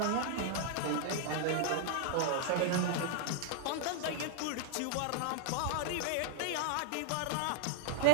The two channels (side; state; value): both; different; correlation 0.00